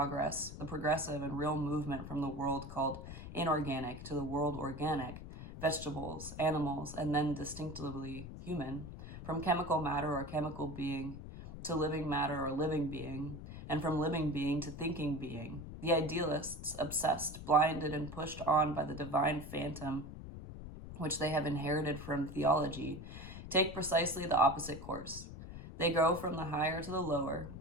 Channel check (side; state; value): left; noise; rumble, 11 dB below the sound